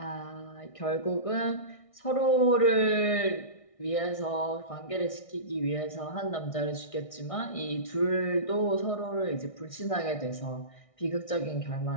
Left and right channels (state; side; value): late; right; 1.6 ms